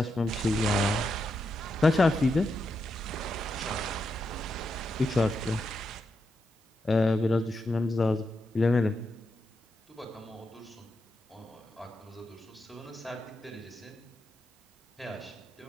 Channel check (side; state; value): both; normal; correlation 0.85